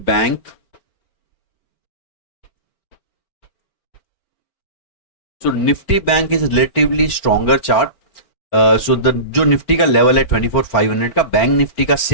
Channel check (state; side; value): late; right; 4.2 ms